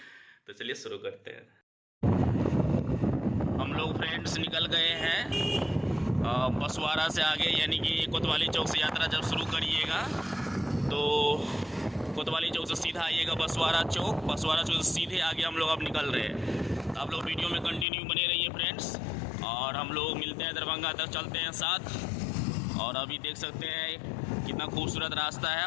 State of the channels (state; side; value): drops out; right; at 17.9 s